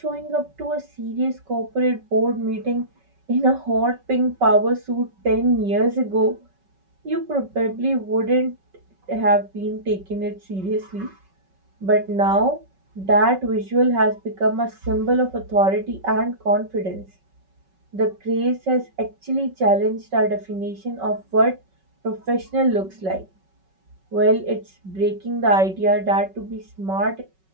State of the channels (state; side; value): late; left; 5.3 ms